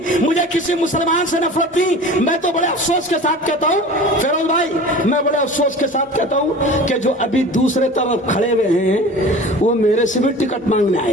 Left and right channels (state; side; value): normal; both; correlation 0.39